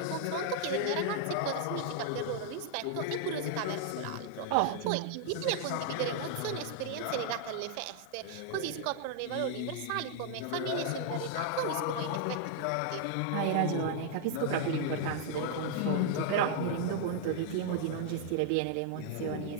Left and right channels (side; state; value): both; different; correlation -0.01